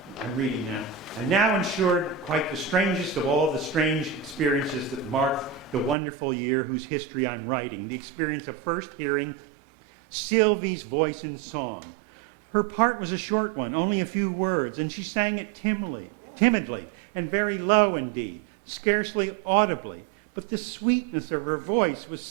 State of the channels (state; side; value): drops out; left; at 6.0 s